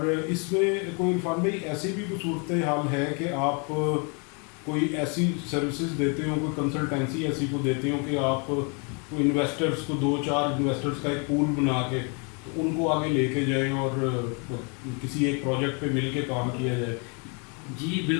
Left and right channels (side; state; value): right; quieter; 35.6 dB